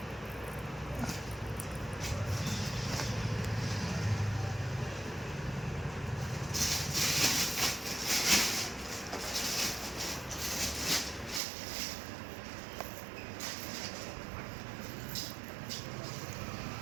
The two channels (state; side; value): drops out; left; at 11.4 s